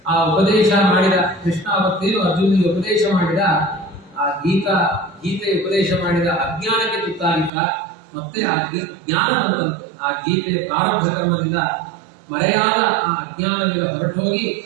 ಆ ಉಪದೇಶ ಮಾಡಿದ, ಕೃಷ್ಣ ಅವತ್ತೇನು ಅರ್ಜುನಿಗೆ ಉಪದೇಶ ಮಾಡಿದ, ಆ ಗೀತೆಯ ಉಪದೇಶ ಮಾಡಿದ ಅಜ್ಞಾನಕ್ಕೆ ತುತ್ತಾಗಿದ್ದ. ಮತ್ತೆ ಆ ಜ್ಞಾನ ಬಂದಂತೆ. ಆ ಗೀತೆಯ ಪ್ರಾರಬ್ಧ ಕರ್ಮದಿಂದ ಮರೆಯಾದ ಆ ಅಜ್ಞಾನದಿಂದ ಹೊರಟೋಗಿ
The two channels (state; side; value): drops out; left; at 7.5 s